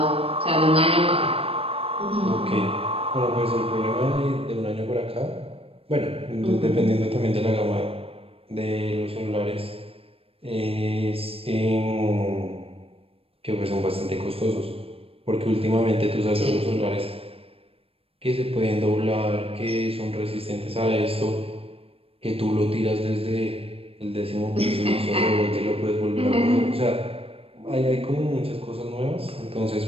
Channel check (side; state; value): left; late; 0.28 ms